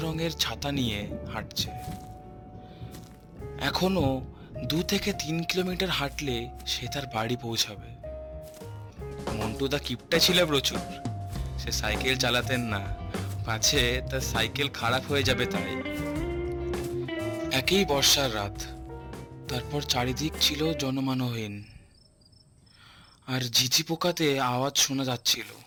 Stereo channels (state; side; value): identical; both; correlation 1.00